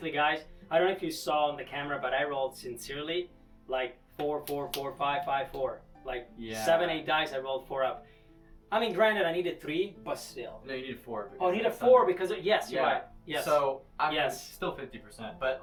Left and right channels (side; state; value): both; identical; correlation 1.00